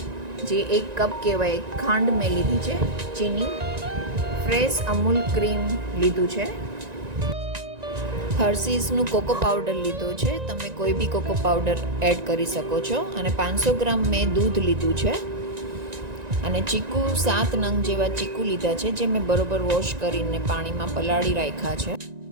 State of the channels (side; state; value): left; late; 1.9 ms